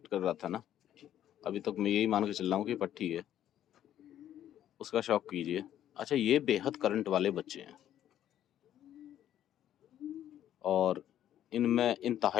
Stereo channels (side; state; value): right; quieter; 11.3 dB